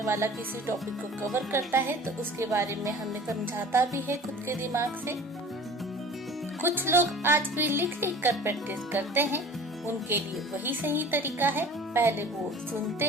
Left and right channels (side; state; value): both; normal; correlation 0.43